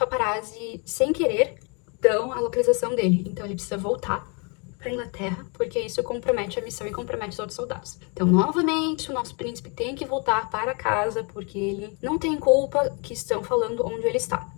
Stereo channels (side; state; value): right; quieter; 33.9 dB